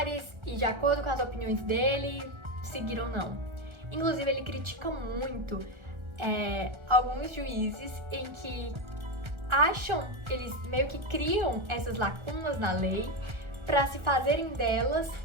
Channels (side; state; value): left; late; 1.3 ms